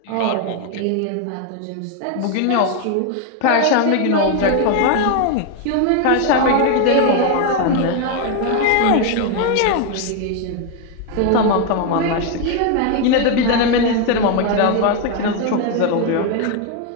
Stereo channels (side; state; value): both; different; correlation 0.01